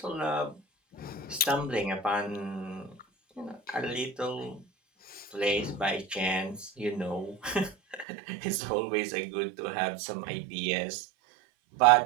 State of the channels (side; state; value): left; drops out; at 8.1 s